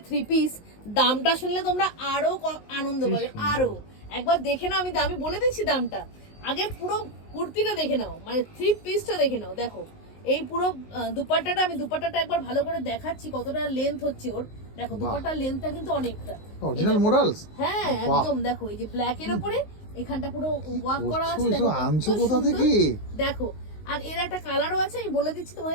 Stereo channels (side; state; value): right; late; 19 ms